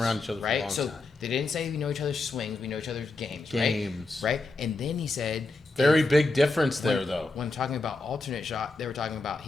each other right? for a long time. They didn't say we know each other's swings, we know each other's games. Right? And then he said... Very big difference there, though. When talking about alternate shot, they were talking about,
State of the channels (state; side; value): quieter; right; 3.3 dB